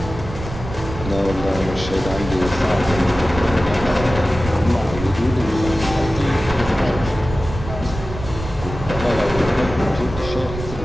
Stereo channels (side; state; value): right; noise; rumble, 10 dB below the sound